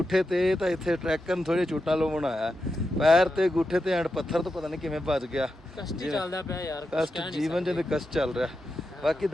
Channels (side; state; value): both; normal; correlation 0.88